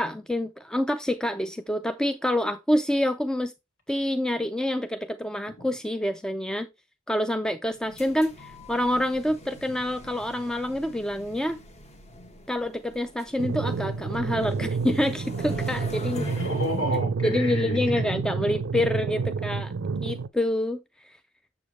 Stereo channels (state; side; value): normal; both; correlation 0.81